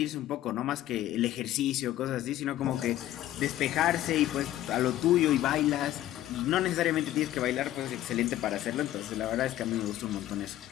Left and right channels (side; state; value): right; quieter; 13.6 dB